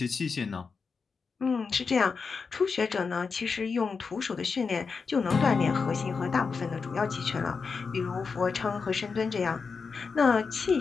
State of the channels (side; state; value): right; quieter; 5.1 dB